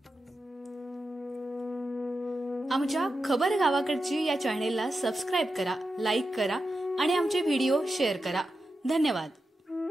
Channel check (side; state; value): both; normal; correlation 0.90